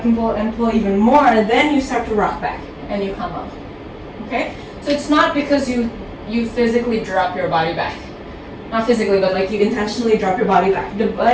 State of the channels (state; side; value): identical; both; correlation 1.00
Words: pull and pull even more, then you start to rock back and you come up. Okay? So it's not because you physically drop your body back. Not physically, but like you intentionally drop your body back. The